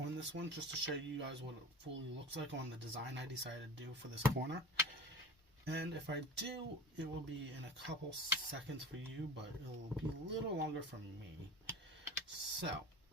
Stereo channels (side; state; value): both; normal; correlation 0.36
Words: this one just to show you guys what it fully looks like on the design I decided to do for this corner. And if I do, it will be in a couple seconds for you, but it will be a little longer for me. So